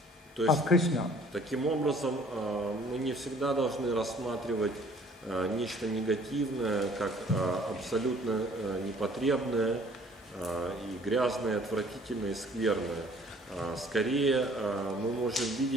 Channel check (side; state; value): both; normal; correlation 0.56